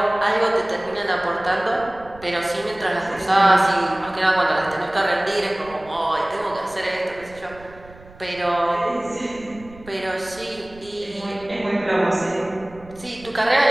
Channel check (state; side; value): noise; right; rumble, 21 dB below the sound